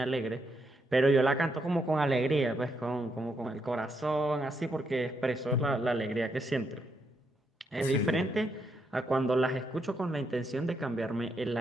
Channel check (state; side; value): normal; both; correlation 0.79